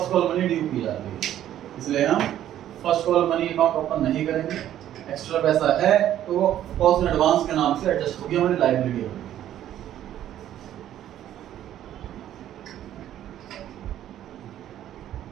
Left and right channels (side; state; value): left; quieter; 11.7 dB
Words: कॉल मनी ड्यू की जाती है, इसलिए हम first call money account open नहीं करेंगे। एक्स्ट्रा पैसा है तो कॉल्स इन एडवांस के नाम से एडजस्ट होगी हमारी लायबिलिटी।